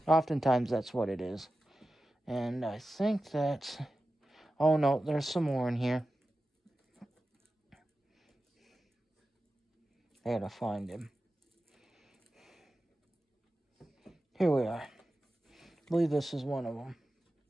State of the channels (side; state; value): both; normal; correlation 0.93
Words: Oftentimes that's what it is. And I think that's... Oh no, there's some more in here. I gotta find him. Here we are. I believe this is one of them